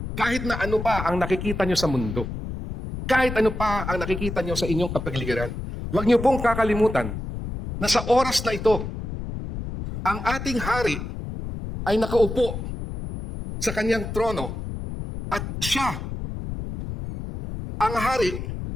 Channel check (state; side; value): noise; left; rumble, 7 dB below the sound